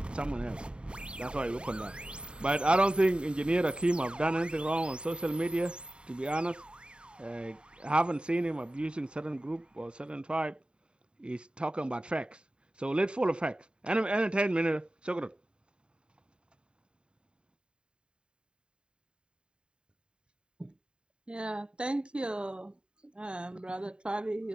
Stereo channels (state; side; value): late; left; 0.052 ms